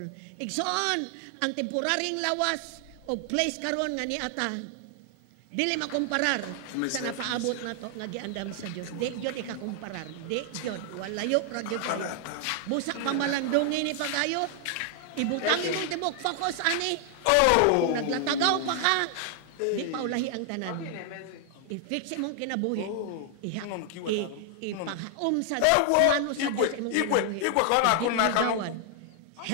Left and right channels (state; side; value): different; both; correlation 0.00